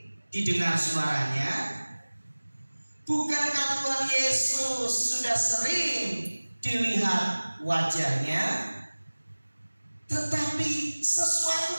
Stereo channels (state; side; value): inverted; both; correlation -1.00